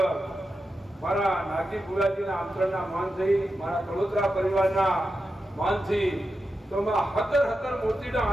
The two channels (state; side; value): normal; both; correlation 0.89